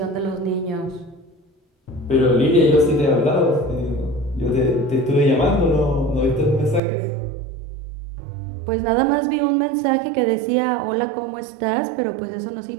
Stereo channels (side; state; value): left; drops out; at 6.8 s